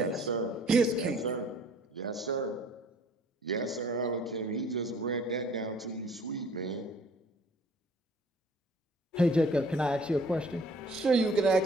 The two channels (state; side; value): normal; both; correlation 0.54